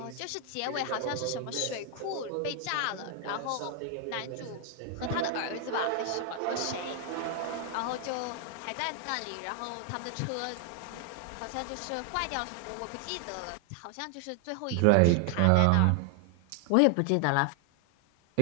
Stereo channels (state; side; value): different; both; correlation 0.00